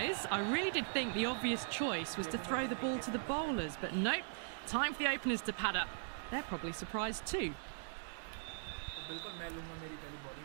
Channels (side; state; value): left; silent; digital silence